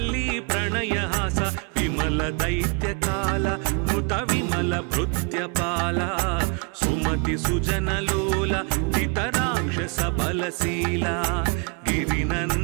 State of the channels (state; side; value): quieter; left; 33.4 dB